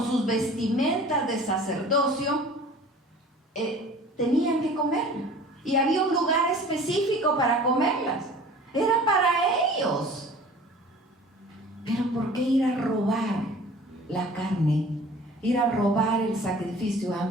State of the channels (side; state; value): both; normal; correlation 0.45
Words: sus vestimentas de sacerdocio, tenían que comerla, y había un lugar específico para comerlas, era para ellos. Pero ¿por qué ir a robar la carne? Ir a robar el sacrificio